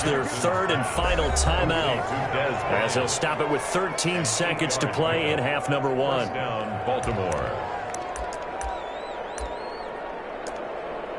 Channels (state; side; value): identical; both; correlation 1.00